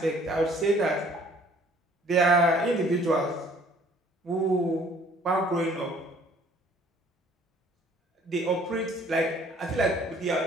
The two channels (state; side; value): normal; both; correlation 0.56